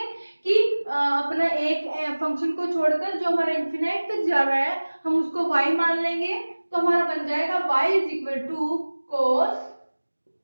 कि अपना एक फंक्शन को छोड़कर जो हमारा इंफिनाइट तक जा रहा है हम उसको y मान लेंगे तो हमारा बन जाएगा y is equal to cos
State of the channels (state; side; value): inverted; both; correlation -1.00